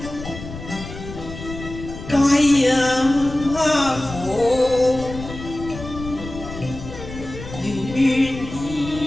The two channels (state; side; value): noise; left; rumble, 11 dB below the sound